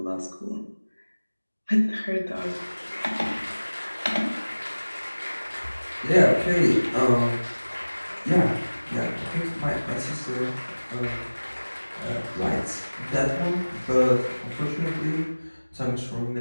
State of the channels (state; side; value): inverted; both; correlation -1.00